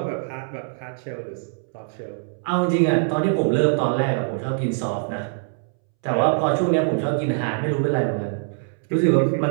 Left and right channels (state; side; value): silent; left; 63 dB below the other